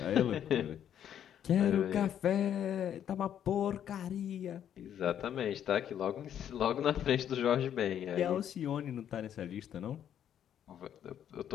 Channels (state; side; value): quieter; right; 9.8 dB